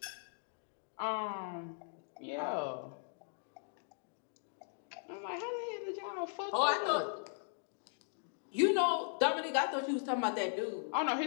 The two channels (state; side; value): silent; right; digital silence